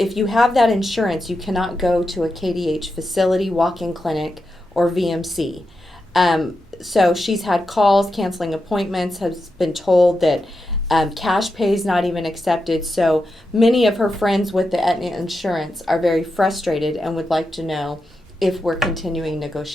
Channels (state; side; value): normal; both; correlation 0.88